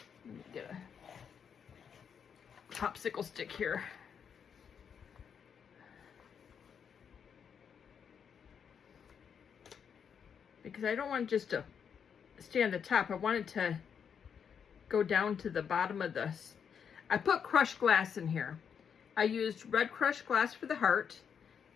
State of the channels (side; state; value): right; quieter; 7.3 dB